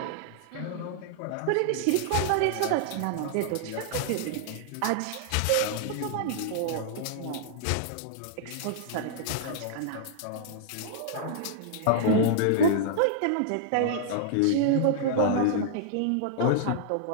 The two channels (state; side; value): different; both; correlation -0.01